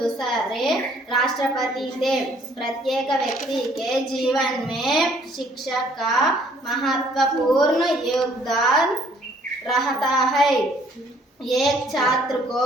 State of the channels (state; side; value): normal; both; correlation 0.61